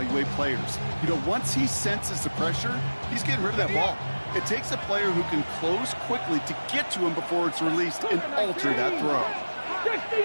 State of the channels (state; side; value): inverted; both; correlation -1.00